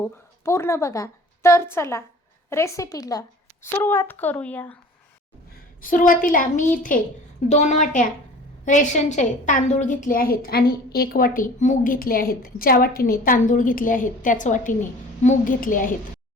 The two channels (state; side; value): normal; both; correlation 0.45